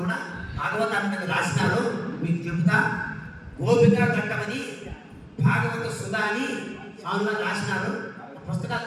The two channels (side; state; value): both; identical; correlation 1.00